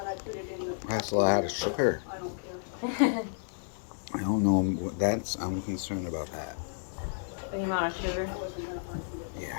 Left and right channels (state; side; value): silent; right; digital silence